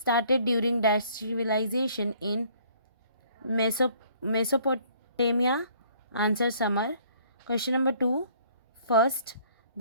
during dash civilization in Mesopotamia. Answer, Summer. Question number 2. First,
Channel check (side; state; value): both; inverted; correlation -0.60